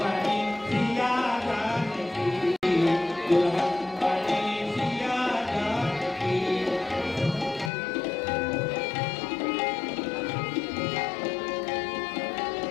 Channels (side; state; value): right; drops out; at 7.7 s